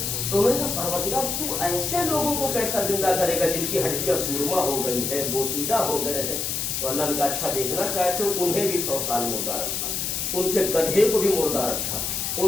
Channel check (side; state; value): left; noise; hiss, 1 dB below the sound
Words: تو انہوں نے کہا پروردگار تو ایسے لوگوں کو کیسا زندہ کرے گا جن کی ہڈیاں سرما ہو گئی ہے، بوسیدہ ہو گئے ہیں؟ تو اللہ نے کہا اچھا دیکھنا چاہتے ہو، انہیں بھی 100 سال مردہ رکھا، ان کے گدھے کو بھی مردہ رکھا،